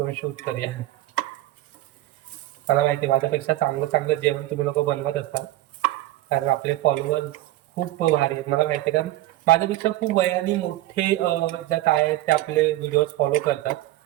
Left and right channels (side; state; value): left; quieter; 15.8 dB